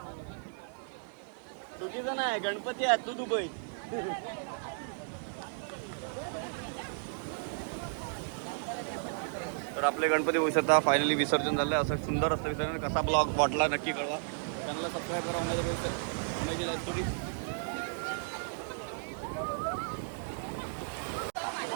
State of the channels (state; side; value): silent; left; digital silence